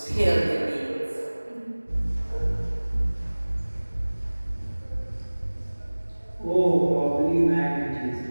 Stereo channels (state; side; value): inverted; both; correlation -1.00